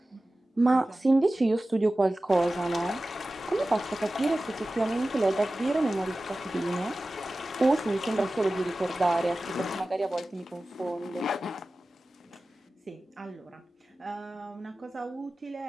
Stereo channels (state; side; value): normal; both; correlation 0.96